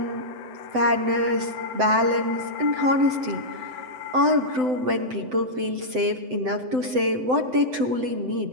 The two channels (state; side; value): late; left; 7.8 ms